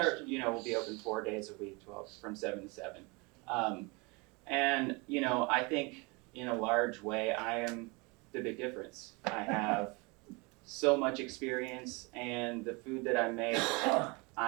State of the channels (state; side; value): quieter; left; 28.0 dB